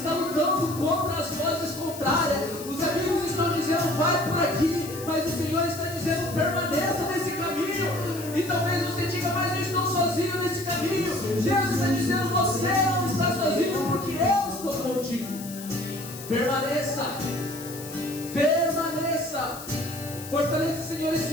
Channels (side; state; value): left; noise; hiss, 13 dB below the sound